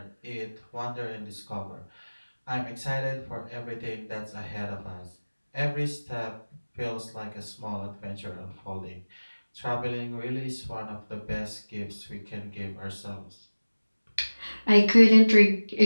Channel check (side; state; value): both; inverted; correlation -1.00